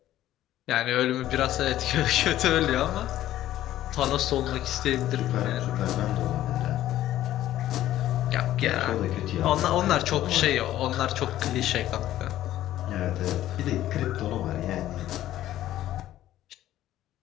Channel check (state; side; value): quieter; right; 13.4 dB